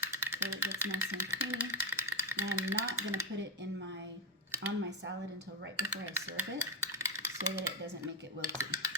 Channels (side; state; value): both; normal; correlation 0.08